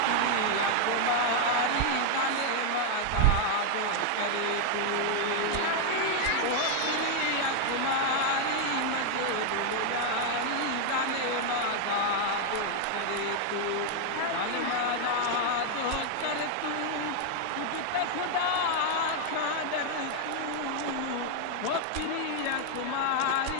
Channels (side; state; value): both; different; correlation 0.00